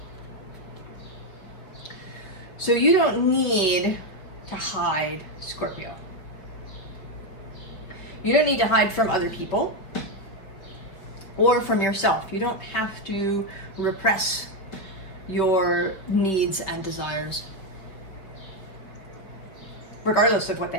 So you don't need to hide, Scorpio. You don't need to hide from other people or from yourself. You don't have to repress your needs and desires, regardless of what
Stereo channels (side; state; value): right; late; 5.3 ms